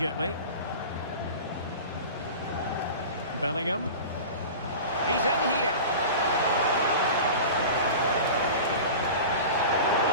Bellingham. He's in here.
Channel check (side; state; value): both; inverted; correlation -0.34